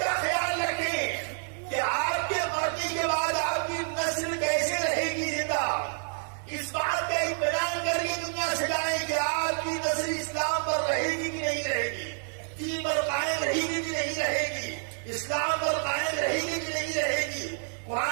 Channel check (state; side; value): silent; left; digital silence